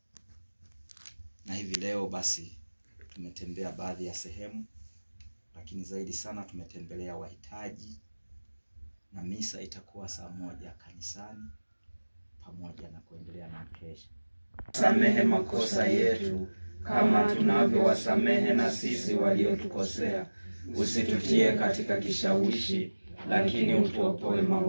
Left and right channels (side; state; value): both; inverted; correlation -1.00